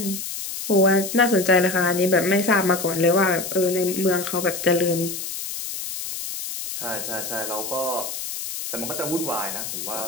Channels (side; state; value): left; noise; hiss, 6 dB below the sound